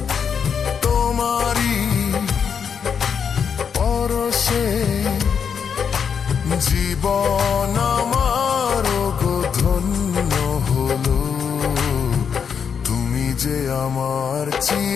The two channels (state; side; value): quieter; right; 6.9 dB